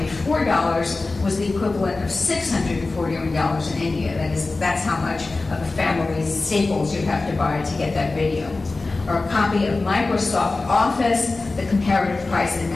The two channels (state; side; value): quieter; right; 3.5 dB